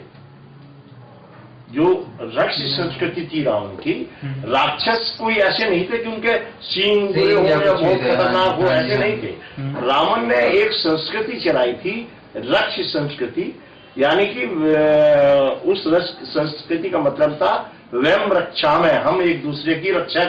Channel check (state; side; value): identical; both; correlation 1.00